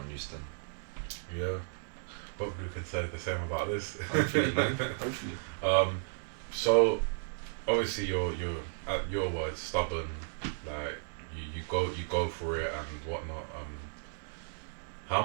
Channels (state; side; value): silent; left; digital silence